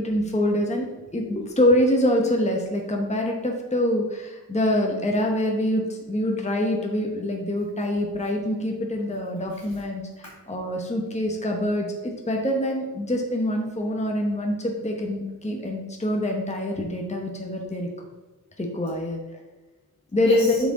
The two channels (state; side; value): normal; both; correlation 0.44